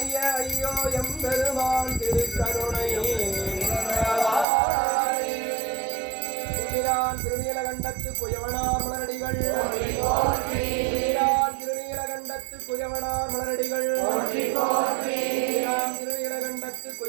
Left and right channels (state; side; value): drops out; left; at 4.5 s